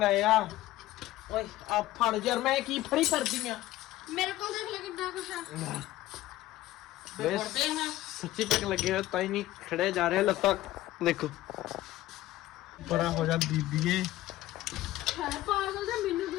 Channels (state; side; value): quieter; right; 15.9 dB